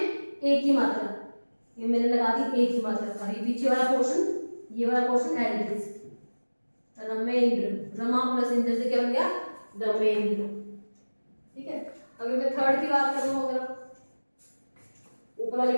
ए की मात्रा, ये मैंने लगा दी ए की मात्रा। और ये पीछे वाला पोर्शन, ये वाला portion as it is, Ramendra, Rama plus Indra से क्या बन गया, रमेंद्र। ठीक है, अगर मैं थर्ड की बात कर रहा हूँ, अगर ऊपर वाले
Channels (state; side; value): inverted; both; correlation -1.00